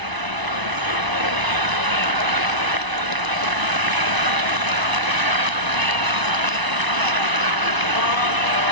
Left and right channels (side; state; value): left; late; 1.0 ms